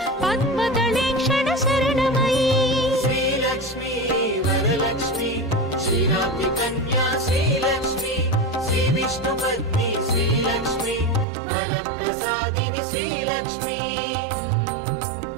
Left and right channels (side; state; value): left; drops out; at 11.2 s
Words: पद्मदलेक्षण शरणमयी श्रीलक्ष्मी वरलक्ष्मी क्षीराब्धि कन्या श्रीलक्ष्मी श्रीविष्णुपत्नी श्रीलक्ष्मी वरप्रसादिनि श्रीलक्ष्मी